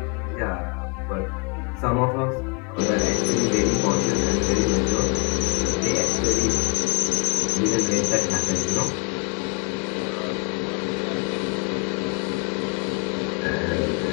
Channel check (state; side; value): quieter; right; 31.6 dB